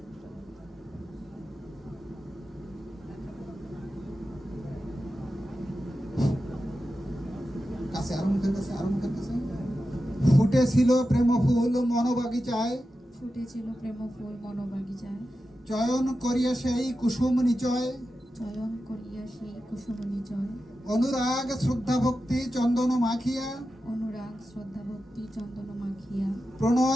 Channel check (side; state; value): both; normal; correlation 0.91